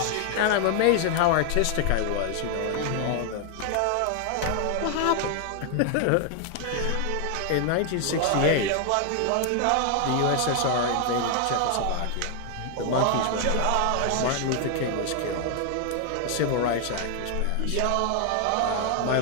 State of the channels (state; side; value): different; both; correlation 0.00